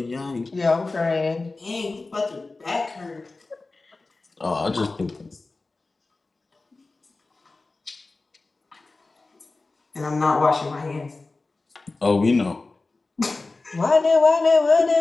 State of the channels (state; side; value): quieter; right; 3.5 dB